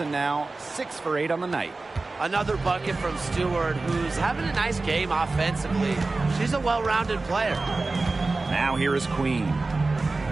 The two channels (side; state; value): left; quieter; 3.5 dB